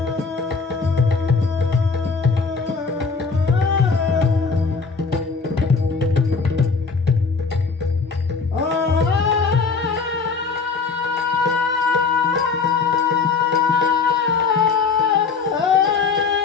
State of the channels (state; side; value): quieter; right; 4.9 dB